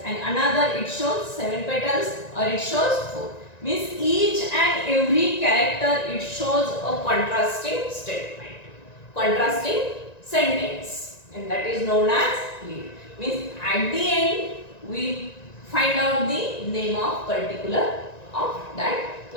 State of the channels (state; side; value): late; right; 1.9 ms